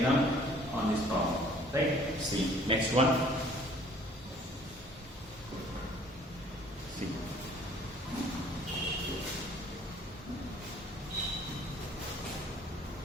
on this problem. Right? See, next one. See.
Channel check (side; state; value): both; normal; correlation 0.55